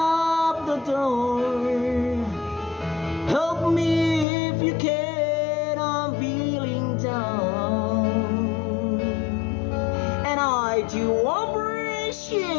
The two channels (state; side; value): drops out; right; at 4.2 s